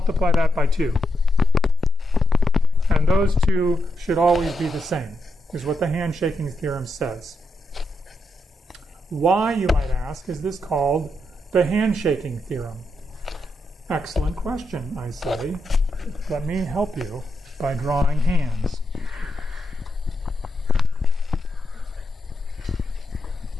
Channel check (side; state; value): both; normal; correlation 0.83